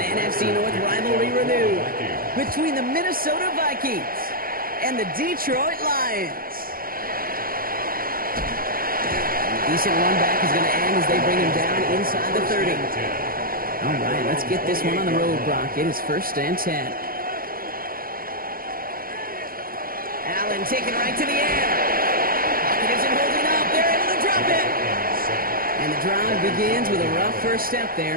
North rivalry renewed between the Minnesota Vikings and the Detroit Lions. A decent run back is going to end as they bring him down inside the 30. All right, let's get this one on the road, Brock. It is 1st and 10. Allen taken right to the air. Pocket isn't holding up. They're able to drop it. And the drive begins with a rough first step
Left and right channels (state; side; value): late; left; 0.42 ms